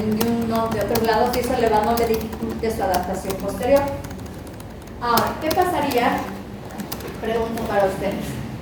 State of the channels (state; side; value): identical; both; correlation 1.00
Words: de otros lados, y eso no le dificulte su adaptación posterior. Ahora, ¿qué pasaría? Pregunto para ustedes.